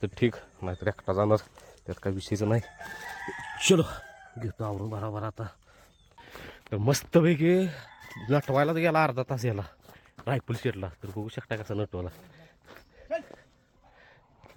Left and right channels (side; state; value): both; identical; correlation 1.00